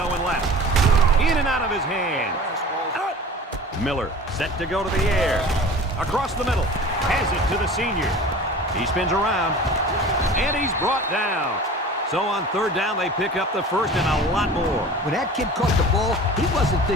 left. In and out of his hands. Miller set to go to the air. Across the middle. Has it to the senior. He spins around. And he's brought down. So on third down, they pick up the first and a lot more. When that kid caught the ball, he wasn't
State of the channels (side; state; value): both; normal; correlation 0.40